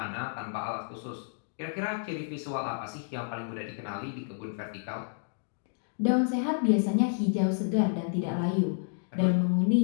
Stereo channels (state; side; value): silent; right; digital silence